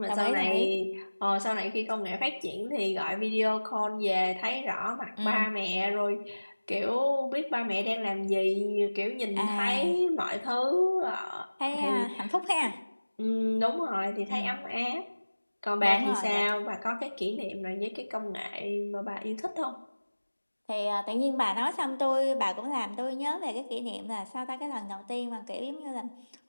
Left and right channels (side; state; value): both; inverted; correlation -1.00